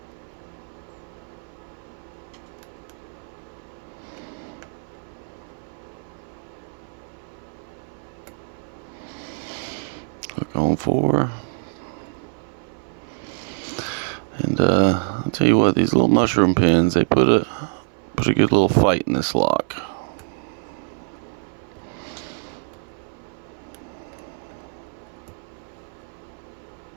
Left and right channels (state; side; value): silent; left; 58 dB below the other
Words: 4. And I'll tell you what, these little mushroom pins, they put a good little fight in this lock.